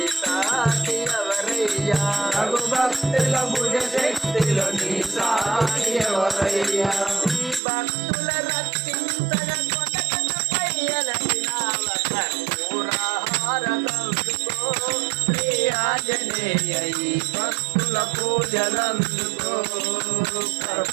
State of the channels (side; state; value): left; drops out; at 7.6 s